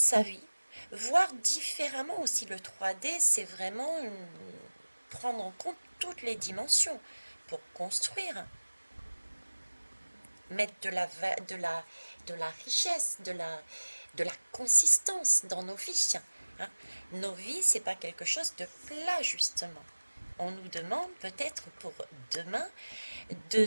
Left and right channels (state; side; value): inverted; both; correlation -1.00